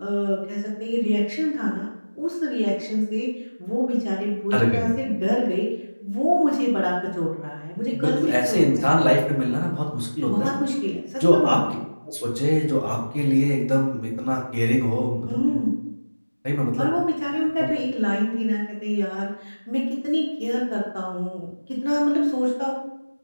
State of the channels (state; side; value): inverted; both; correlation -1.00